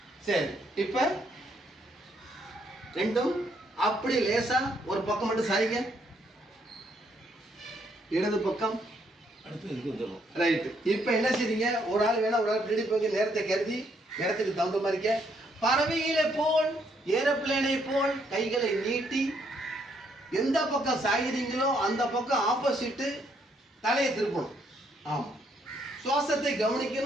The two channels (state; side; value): normal; both; correlation 0.72